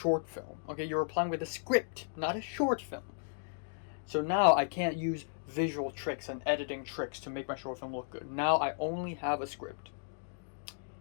film. Okay, you're applying with a script, not a short film. So now I can't use visual tricks and editing tricks to make my short film look good. Now I only have a script.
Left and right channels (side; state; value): right; silent; digital silence